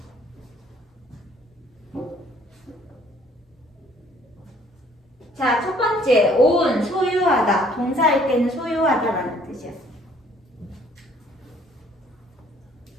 자, 첫 번째, own, 소유하다. 동사일 때는 소유하다라는 뜻이야.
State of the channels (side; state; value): both; normal; correlation 0.59